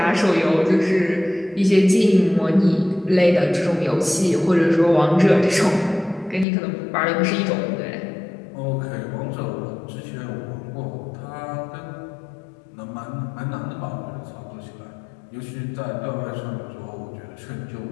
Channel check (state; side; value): drops out; right; at 6.5 s